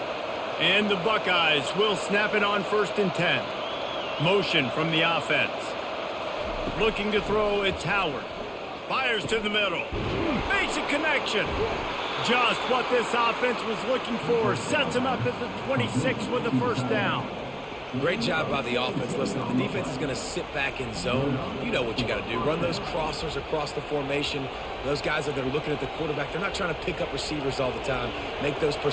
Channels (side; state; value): both; identical; correlation 1.00